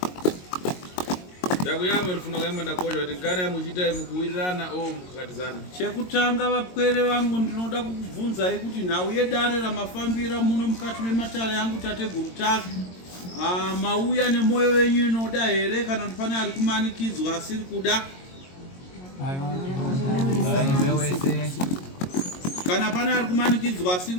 Ndakuyama rifuna kuyamba ndakosha kuti kana muchiita mukuwirirana o mukakatizana. Chekutanga vapwere vangu ndinoda kukubvunzai kuti nhau yedare ramafambira muno mukati mematare yangu tateguru take. Mauya nemwoyo wenyu inoda here kana kuti pane ari kumanikidzwa asiri kuda? Kana pane ari kumanikidzwa asiri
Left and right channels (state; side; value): late; right; 22 ms